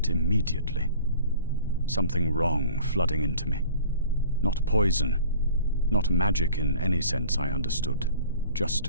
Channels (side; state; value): both; inverted; correlation -0.46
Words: immediately. Something wrong flooding into me. Not poison, not magic in any sense I understood,